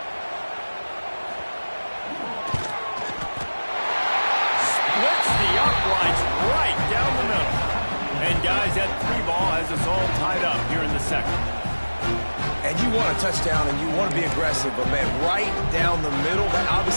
Splits the uprights right down the middle. And guys, that 3 ball has us all tied up here in the second. And you want a touchdown and you want to be aggressive, but man, right down the middle, that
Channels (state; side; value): inverted; both; correlation -1.00